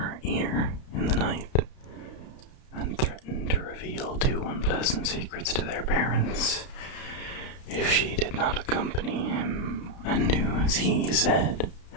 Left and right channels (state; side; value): late; right; 32 ms